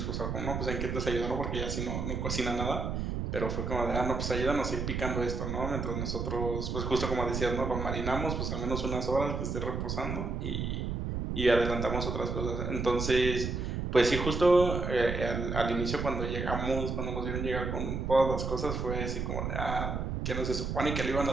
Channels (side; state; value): right; noise; rumble, 2 dB below the sound